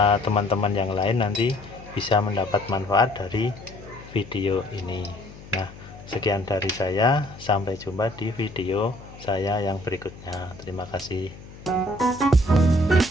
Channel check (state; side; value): noise; left; hum, 17 dB below the sound